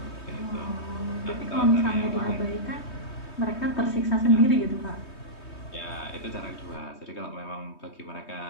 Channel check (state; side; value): late; right; 3.2 ms